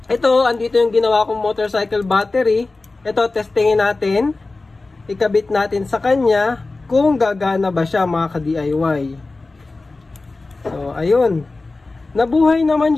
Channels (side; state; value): right; quieter; 3.4 dB